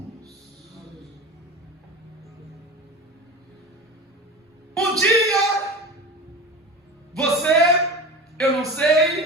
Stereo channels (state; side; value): normal; both; correlation 0.31